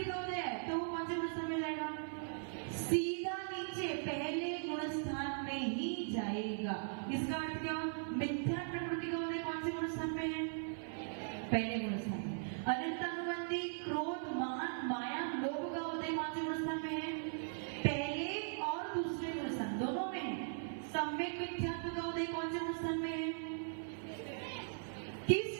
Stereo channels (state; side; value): silent; left; 51 dB below the other